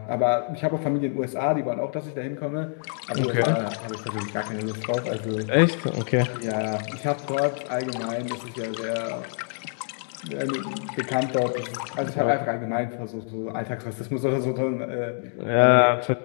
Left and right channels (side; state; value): right; silent; 61 dB below the other